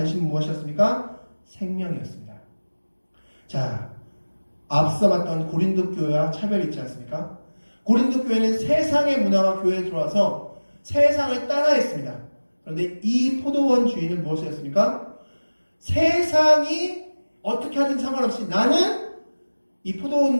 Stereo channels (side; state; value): both; inverted; correlation -1.00